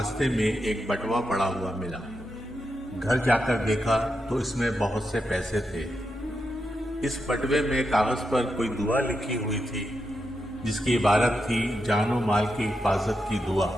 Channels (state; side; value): normal; both; correlation 0.86